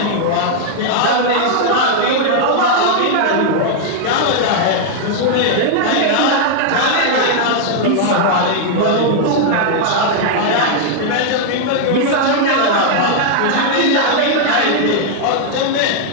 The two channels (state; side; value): different; both; correlation 0.00